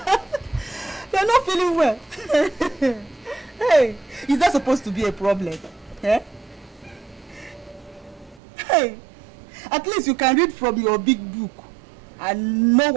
You're not feeling well. Hey, is that supposed to be a problem? Eh? Hey, at least you can read from your big book and know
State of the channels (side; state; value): left; drops out; at 8.4 s